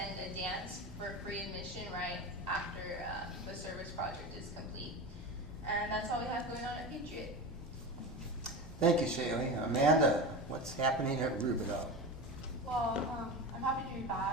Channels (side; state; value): both; normal; correlation 0.26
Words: a dance for free admission right after the service project is complete. And that's all we have going on at Patriot. Thank you, Shaylee. Amanda, what's happening at Rubidoux? Well, I'm happy to be